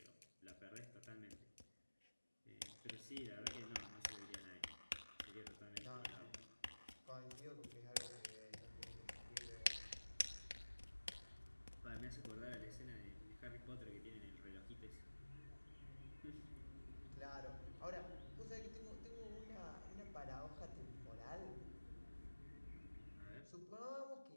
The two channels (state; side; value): inverted; both; correlation -1.00